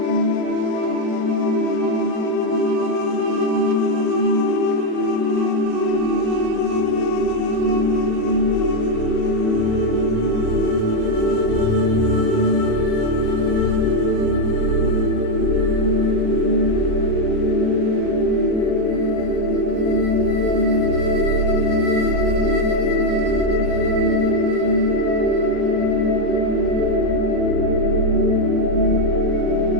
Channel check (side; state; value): both; normal; correlation 0.04